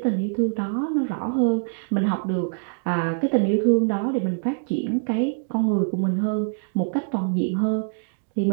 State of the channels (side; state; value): left; silent; digital silence